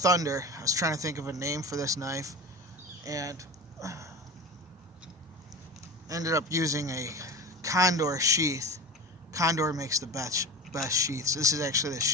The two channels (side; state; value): both; normal; correlation 0.30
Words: I was trying to think of a name for this knife and ended up using a Condor sheath. Condor makes the best sheaths. This is actually the